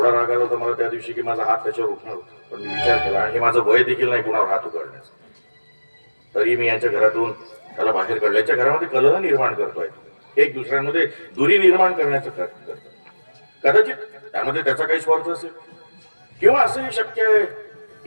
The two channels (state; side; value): inverted; both; correlation -1.00